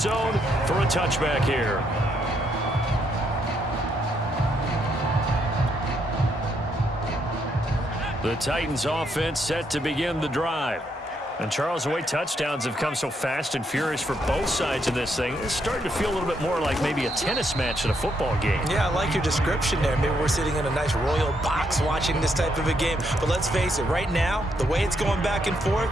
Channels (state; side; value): normal; both; correlation 0.76